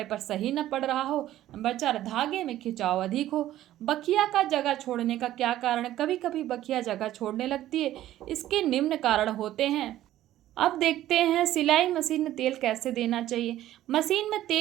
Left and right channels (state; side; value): quieter; left; 13.6 dB